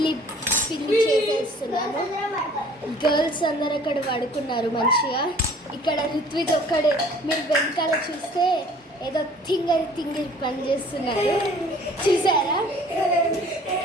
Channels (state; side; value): normal; both; correlation 0.52